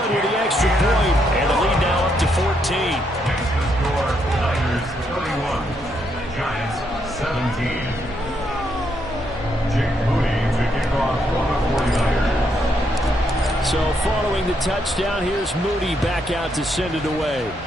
with the extra point, and the lead now up to 14. Score, Niners 31, Giants 17. Jake Moody to kick off for the 49ers. So following the touchdown, here's Moody back out to send it away.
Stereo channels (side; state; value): both; normal; correlation 0.76